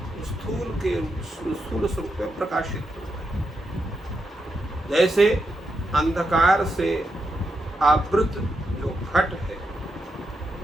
स्थूल स्वरूप में प्रकाशित होता है। जैसे अंधकार से आवृत जो घट है,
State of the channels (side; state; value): both; normal; correlation 0.84